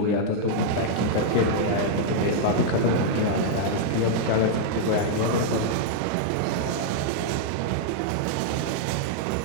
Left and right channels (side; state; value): both; different; correlation -0.01